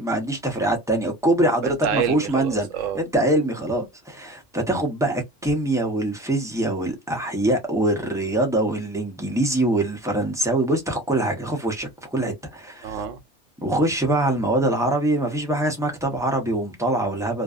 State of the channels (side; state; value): both; normal; correlation 0.39